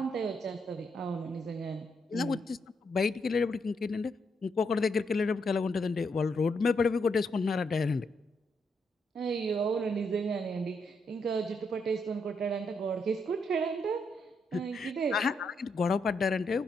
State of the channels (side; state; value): both; normal; correlation 0.78